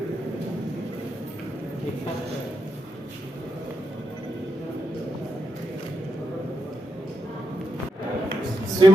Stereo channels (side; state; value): both; normal; correlation 0.82